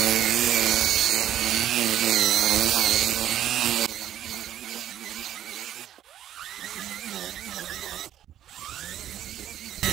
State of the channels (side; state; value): left; quieter; 11.5 dB